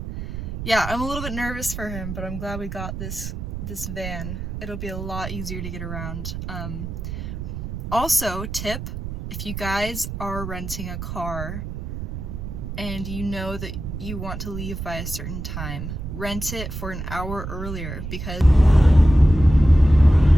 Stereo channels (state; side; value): noise; right; rumble, 7 dB below the sound